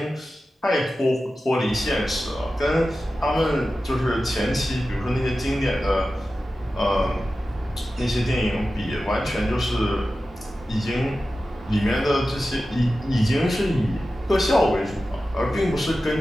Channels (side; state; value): both; normal; correlation 0.94